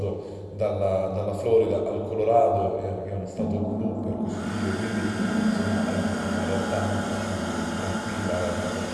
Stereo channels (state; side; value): identical; both; correlation 1.00